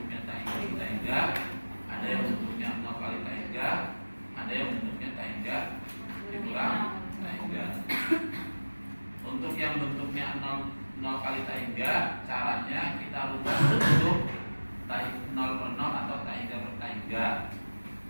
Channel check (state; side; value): inverted; both; correlation -1.00